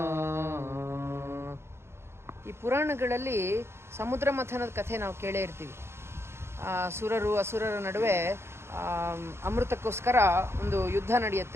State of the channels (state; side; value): late; left; 0.12 ms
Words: ಈ ಪುರಾಣಗಳಲ್ಲಿ ಸಮುದ್ರ ಮಥನದ ಕಥೆ ನಾವು ಕೇಳೇ ಇರ್ತೀವಿ. ಸುರರು ಅಸುರರ ನಡುವೆ ಅಮೃತಕ್ಕೋಸ್ಕರ ಒಂದು ಯುದ್ಧ